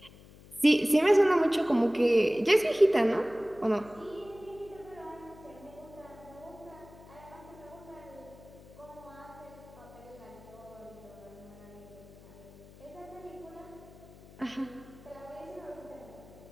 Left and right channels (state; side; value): noise; left; hum, 21 dB below the sound